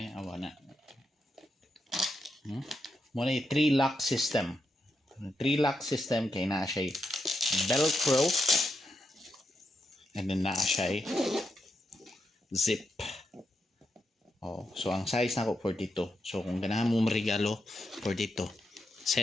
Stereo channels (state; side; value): normal; both; correlation 0.84